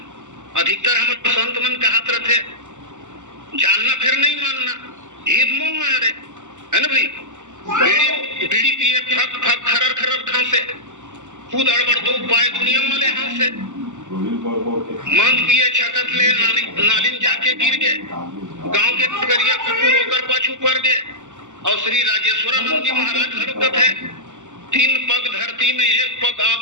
अधिकतर हमारे संत मन कहत रहते जानना फिर नहीं मानना ये तो मोह है ना भाई। बीड़ी पिए फक फक खरर खरर खांसे खुद अड़बड़ दो पाए दुनिया वाले हाथ से मंद पिए छकत ले नालिन जाके गिर गए गांव के करिया कुकुर होकर पाछू पड़ गए। और श्री राजेश्वरानंद जी महाराज हरकत है 3 पग धरती में 1 पग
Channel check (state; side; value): late; left; 0.85 ms